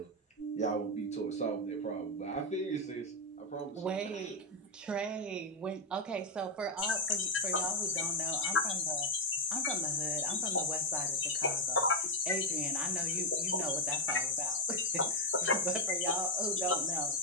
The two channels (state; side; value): normal; both; correlation 0.03